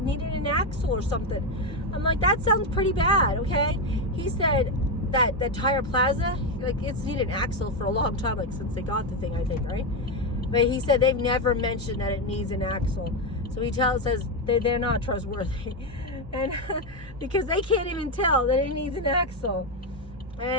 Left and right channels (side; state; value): both; normal; correlation 0.08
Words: needed an axle or something. I'm like, that sounds pretty bad, okay? He said that Tire Plaza, like, it's needed an axle for a long time, like, since they got the thing, I think, right? But he said they've never mentioned that it needs an axle. So he says they're not trustworthy. And because they can't even tell that it needs an axle.